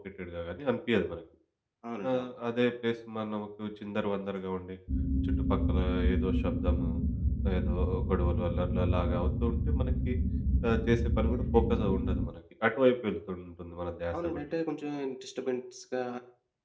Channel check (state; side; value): identical; both; correlation 1.00